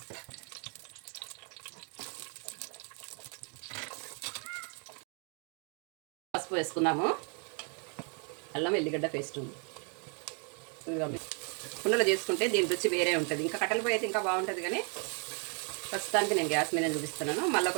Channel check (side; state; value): left; quieter; 38.0 dB